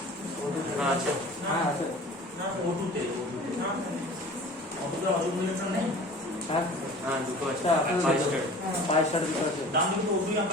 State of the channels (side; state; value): both; normal; correlation 0.42